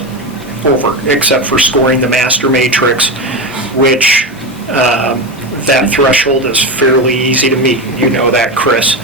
over, except for scoring the master matrix, which that threshold is fairly easy to meet. You know that, Chris.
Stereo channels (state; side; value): normal; both; correlation 0.18